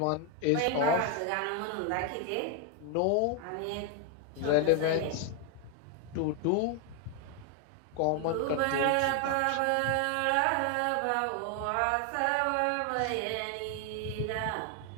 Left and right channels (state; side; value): different; both; correlation 0.00